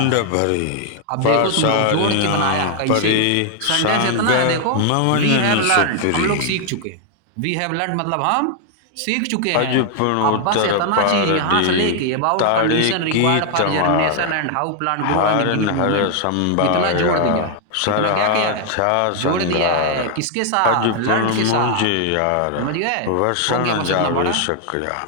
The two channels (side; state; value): both; different; correlation 0.00